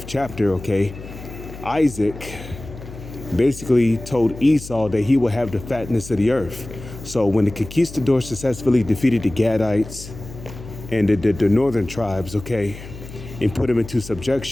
chapter, okay, Isaac basically told Esau that he will have the fatness of the earth. So when the conquistadors successfully defeated the Gadites and the northern tribes, okay, and put them into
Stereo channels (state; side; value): noise; left; hum, 14 dB below the sound